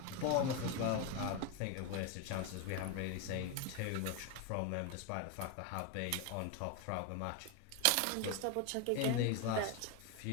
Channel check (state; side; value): different; both; correlation 0.02